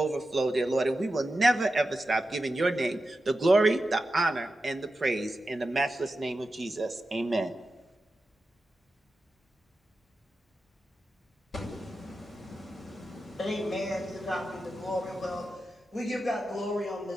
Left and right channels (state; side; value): normal; both; correlation 0.91